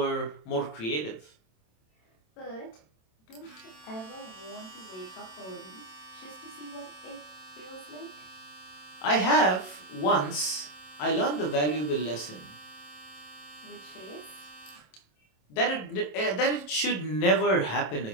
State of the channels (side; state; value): right; late; 27 ms